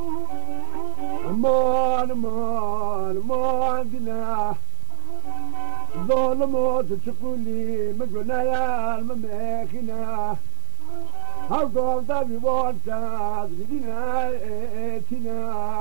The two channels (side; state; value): left; silent; digital silence